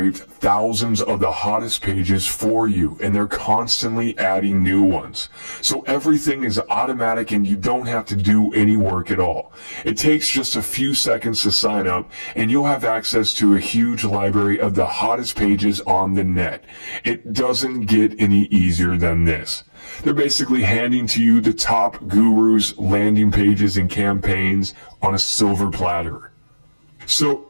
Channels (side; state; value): both; inverted; correlation -1.00